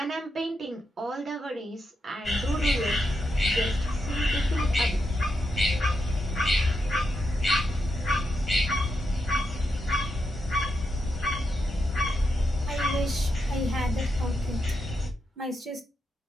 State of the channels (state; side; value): normal; both; correlation 0.84